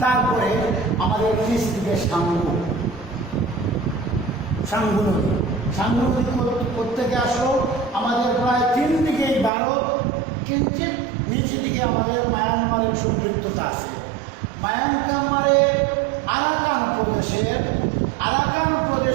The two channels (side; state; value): left; drops out; at 9.5 s